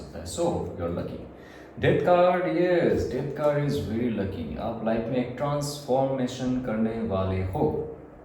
है। So you are lucky. Death card, yes, death card is very lucky. आप लाइफ में एक ट्रांसफॉर्मेशन करने वाले हो।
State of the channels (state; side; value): identical; both; correlation 1.00